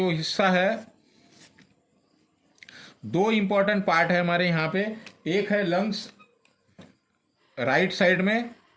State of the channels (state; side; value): identical; both; correlation 1.00